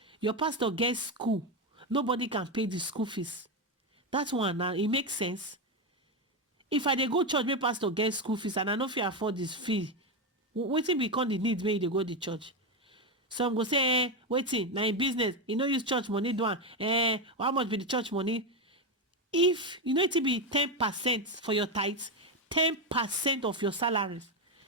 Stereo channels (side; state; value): both; normal; correlation 0.10